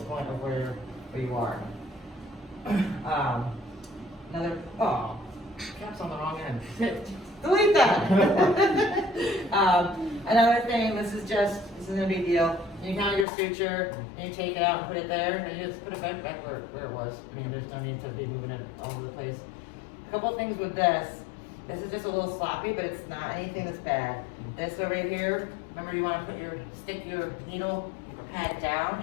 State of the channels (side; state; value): right; drops out; at 13.2 s